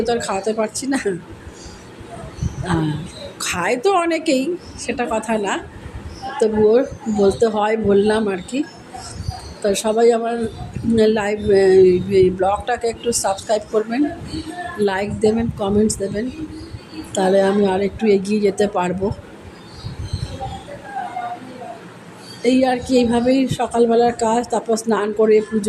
তো আর খাওয়াতে পারছি না, খায় তো অনেকেই, সেটা কথা না, তবুও বলতে হয়, বললাম আর কি। তো সবাই আমার লাইভ ব্লগটাকে একটু সাবস্ক্রাইব করবেন, লাইক দেবেন, কমেন্টস দেবেন, তাহলে আমি আর একটু এগিয়ে যেতে পারবো। এই আর কি, এইভাবেই সকালবেলার কাজ। তারপর স্নান করে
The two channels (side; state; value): both; identical; correlation 1.00